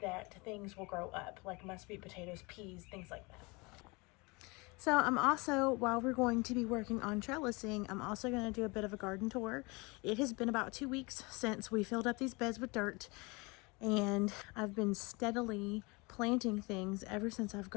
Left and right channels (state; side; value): quieter; right; 26.9 dB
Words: that things will grow up, like sweet potatoes, peas, things like that. So I'm also, while we're going to be working on trellising, I'm also going to do a bit of a garden tour. It has been about 2 weeks since we filled up these beds with dirt, and I've been steadily planting things ever since I've